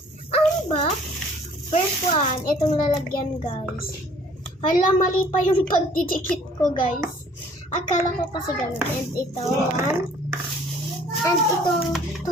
Unbox? First one, itong lalagyan guys. Hala, mali pa yung pagdidikit ko guys. Akala ko kasi ganun. And ito, one. And itong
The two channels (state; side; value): normal; both; correlation 0.55